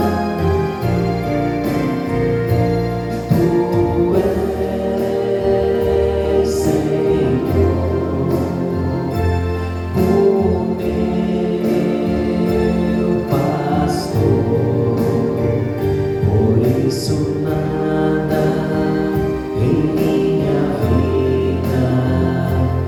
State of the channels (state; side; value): identical; both; correlation 1.00